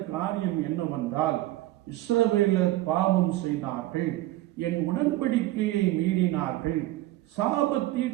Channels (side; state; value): left; quieter; 16.1 dB